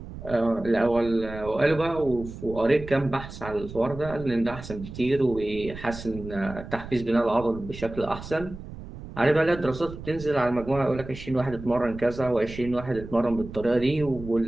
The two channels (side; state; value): right; noise; rumble, 13 dB below the sound